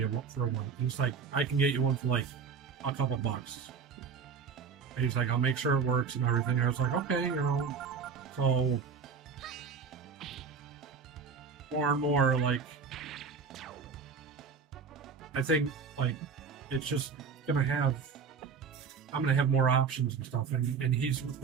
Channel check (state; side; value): quieter; left; 5.8 dB